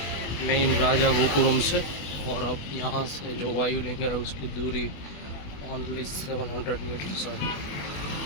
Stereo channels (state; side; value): late; right; 21 ms